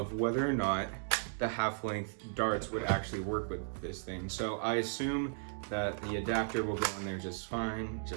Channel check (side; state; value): left; silent; digital silence